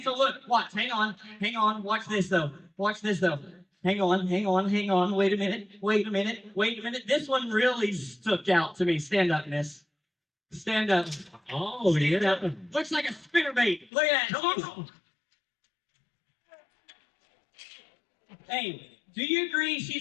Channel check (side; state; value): right; drops out; at 13.9 s